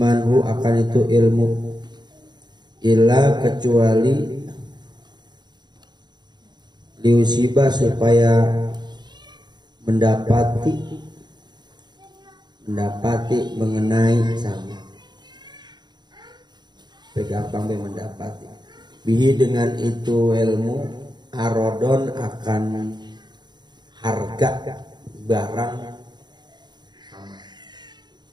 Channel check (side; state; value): left; late; 0.21 ms